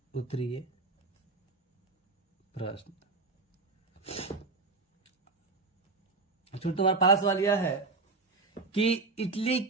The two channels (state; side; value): quieter; left; 3.8 dB